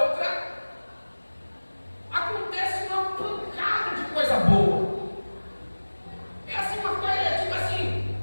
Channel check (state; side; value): inverted; both; correlation -1.00